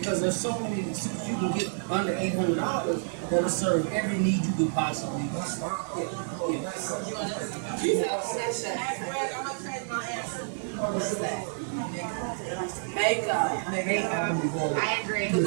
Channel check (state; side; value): silent; left; 57 dB below the other